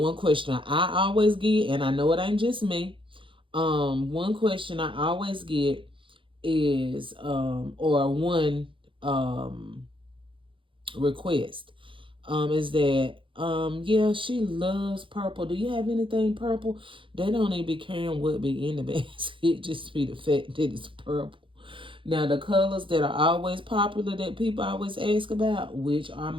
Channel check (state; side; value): late; left; 0.25 ms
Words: question I always get, and I know it ain't just me. One question I always get is, request, is that, yeah, she loves purple. Do you have anything purple? They don't even be caring what be in the basket. It just be the fact that it's purple. Now, the colors that are always popular that people always ask about, which are